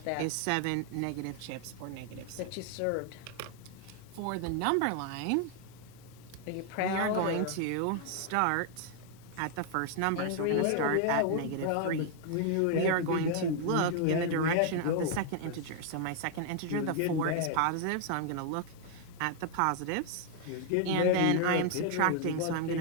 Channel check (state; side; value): different; both; correlation 0.00